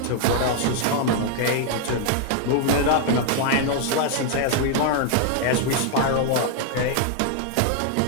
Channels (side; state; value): both; different; correlation 0.00